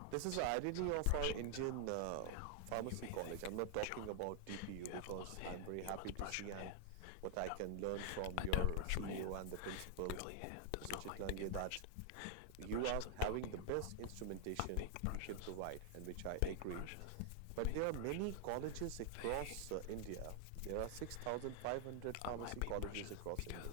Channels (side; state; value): both; different; correlation 0.00